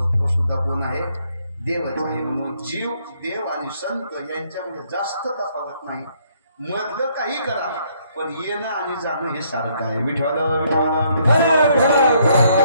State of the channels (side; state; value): both; inverted; correlation -0.68